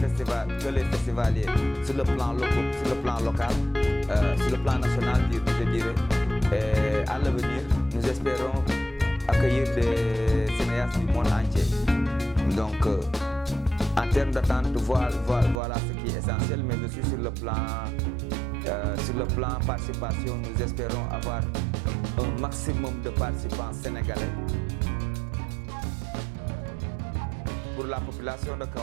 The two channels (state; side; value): drops out; left; at 15.6 s